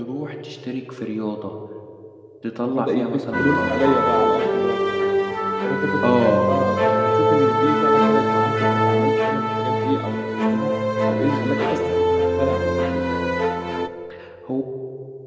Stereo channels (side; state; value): both; identical; correlation 1.00